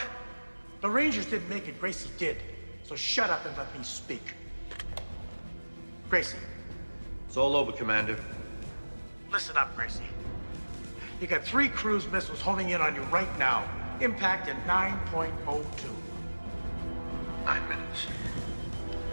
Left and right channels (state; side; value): inverted; both; correlation -1.00